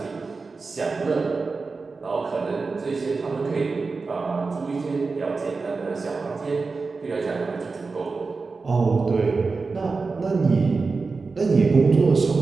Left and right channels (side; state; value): left; quieter; 4.2 dB